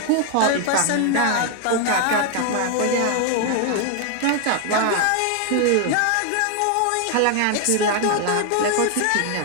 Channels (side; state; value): both; different; correlation 0.00